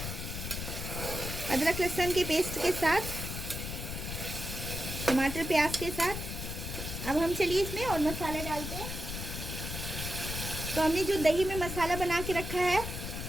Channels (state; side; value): noise; left; rumble, 6 dB below the sound